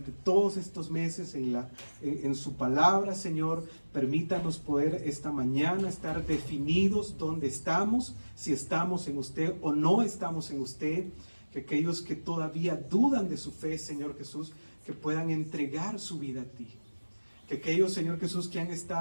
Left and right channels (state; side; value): inverted; both; correlation -1.00